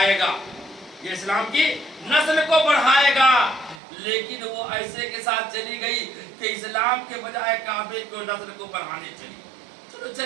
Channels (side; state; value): left; drops out; at 3.8 s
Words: گا، یہ اسلام کی نسل کو بڑھائے گا، لیکن وہ ایسے کے ساتھ چلی گئی کہ اسلام کے بجائے کعبے کو نسل کو بڑھانے چلی۔ چلو